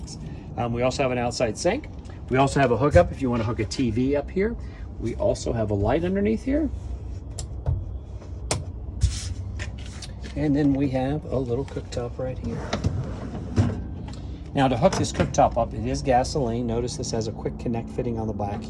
We also have an outside sink. We also have a hookup if you want to hook a TV up here. We also have a light underneath here. And then we have a little cooktop right here. Now to hook this cooktop up, it is gasoline. Notice this has a quick connect fitting on the back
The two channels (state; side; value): identical; both; correlation 1.00